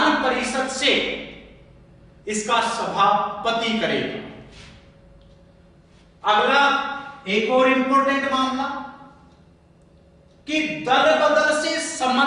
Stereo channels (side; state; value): both; identical; correlation 1.00